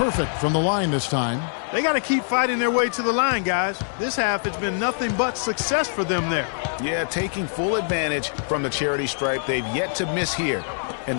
from the line this time. They got to keep fighting their way to the line, guys. This half, it's been nothing but success for them there. Yeah, taking full advantage from the charity stripe. They've yet to miss here in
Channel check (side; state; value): right; silent; digital silence